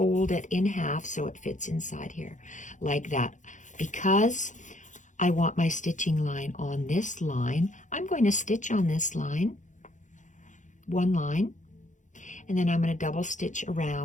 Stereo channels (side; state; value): right; late; 0.36 ms